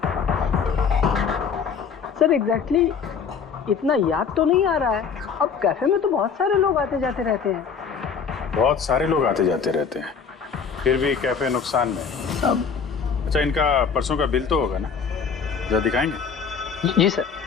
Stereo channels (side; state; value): right; quieter; 6.2 dB